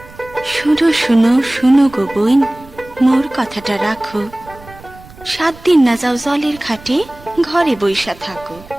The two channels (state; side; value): noise; right; rumble, 21 dB below the sound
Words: শুনো শুনো শুনো গো বোন মোর কথাটা রাখো 7 দিন না যাও জলের ঘাটে ঘরে বইসা থাকো